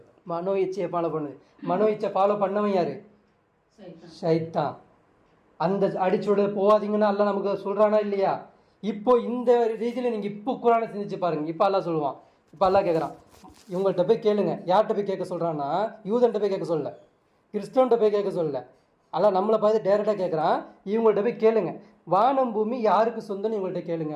மனோ இச்சையை ஃபாலோ பண்ணுது. மனோ இச்சை ஃபாலோ பண்ணவன் யாரு? ஷைத்தான். அந்த அடிச்சுட போகாதீங்கன்னா அல்லாஹ் நமக்கு சொல்றானா இல்லையா? இப்போ இந்த ரீதியில் நீங்கள் இப்போ குரானை சிந்திச்சு பாருங்க. இப்போ அல்லாஹ் சொல்லுவான். இப்போ அல்லாஹ் கேட்குறான், இவங்கள்ட்ட போய் கேளுங்க. யார்கிட்ட போய் கேட்க சொல்கிறான்னா, யூதன்ட்ட போய் கேட்க சொல்லல, கிறிஸ்தவன்ட்ட போய் கேட்க சொல்லல. அல்லாஹ் நம்மளை பார்த்து டேரெக்டாக கேட்குறான், இவங்கள்ட்ட போய் கேளுங்க, வானம் பூமி யாருக்கு சொந்தம்னு இவங்கள்ட்ட கேளுங்க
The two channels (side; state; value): both; identical; correlation 1.00